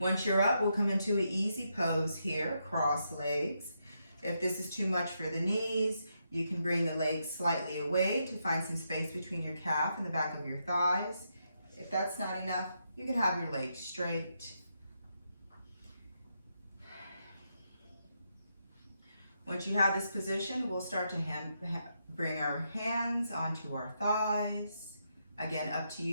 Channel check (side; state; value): both; inverted; correlation -0.81